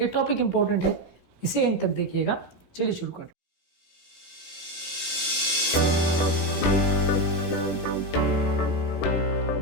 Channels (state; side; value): late; right; 17 ms